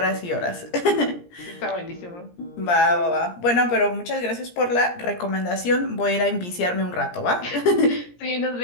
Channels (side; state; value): right; late; 17 ms